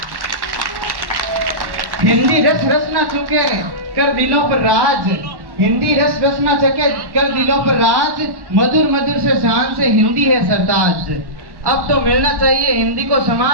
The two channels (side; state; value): left; late; 1.1 ms